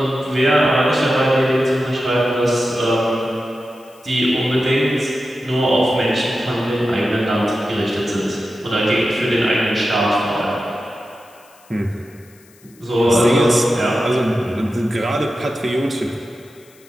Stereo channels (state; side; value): noise; left; hiss, 28 dB below the sound